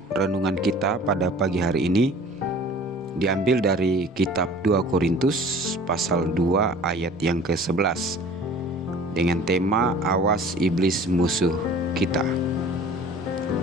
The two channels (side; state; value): both; normal; correlation 0.47